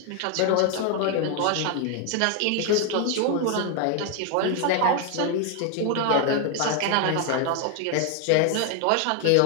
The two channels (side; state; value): both; different; correlation 0.01